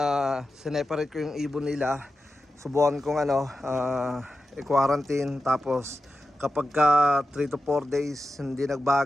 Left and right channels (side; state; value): both; normal; correlation 0.91